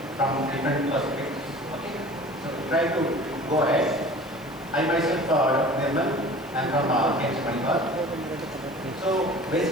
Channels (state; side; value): noise; right; hiss, 24 dB below the sound